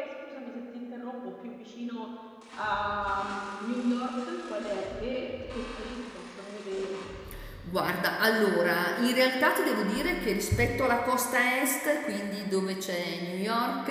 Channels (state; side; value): identical; both; correlation 1.00